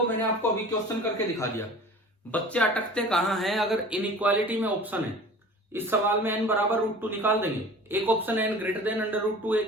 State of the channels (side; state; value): both; normal; correlation 0.42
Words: मैंने आपको अभी क्वेश्चन करके दिखा दिया, बच्चे अटकते कहां हैं। अगर इनइक्वालिटी में ऑप्शन है इस सवाल में n बराबर √2 निकाल देंगे, एक ऑप्शन n ग्रेटर देन √2,